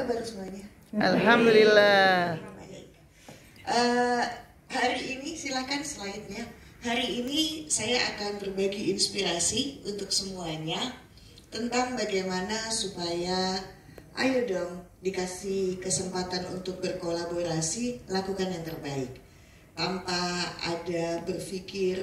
semuanya? Alhamdulillah. Hari ini silakan slide-nya. Hari ini saya akan berbagi inspirasi untuk semuanya tentang bagaimana supaya, ayo dong, dikasih kesempatan untuk berkolaborasi, lakukan yang terbaik. Tanpa ada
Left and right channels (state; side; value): identical; both; correlation 1.00